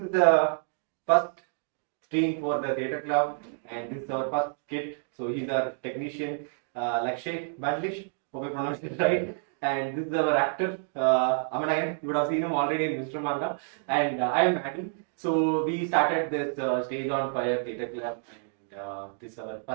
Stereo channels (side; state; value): left; silent; digital silence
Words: the first stream for the theatre club, and this is our first kid. So he's our technician, Lakshay, Bandlish. Hope I pronounced it right. And this is our actor, Aman. You would have seen him already in Mr. Manga. And I am MaddiE. So we started this Stage on Fire Theatre Club, and this is our